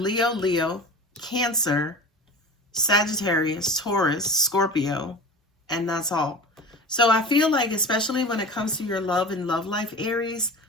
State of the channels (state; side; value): normal; both; correlation 0.34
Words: Cancer, Sagittarius, Taurus, Scorpio, and that's all. So I feel like, especially when it comes to your love and love life, Aries,